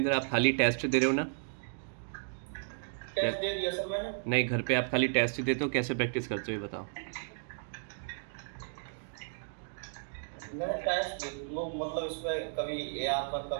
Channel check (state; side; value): silent; left; digital silence